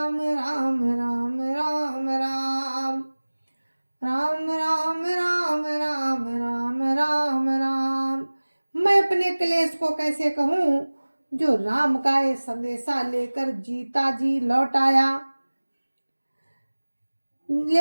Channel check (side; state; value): both; inverted; correlation -1.00